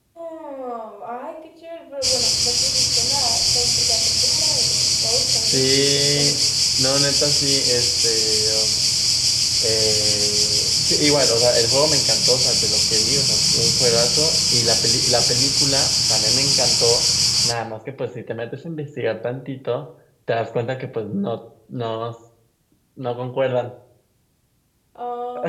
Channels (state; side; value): identical; both; correlation 1.00